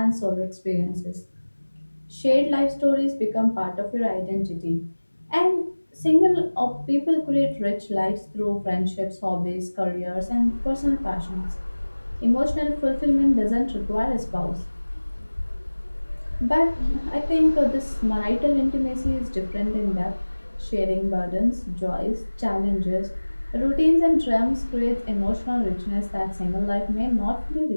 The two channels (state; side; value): inverted; both; correlation -1.00